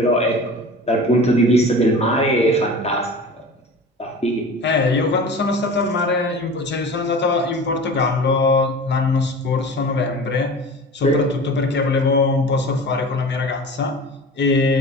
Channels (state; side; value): normal; both; correlation 0.37